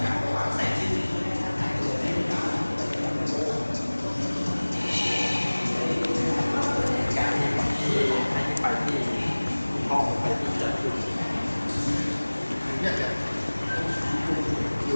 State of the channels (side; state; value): both; inverted; correlation -1.00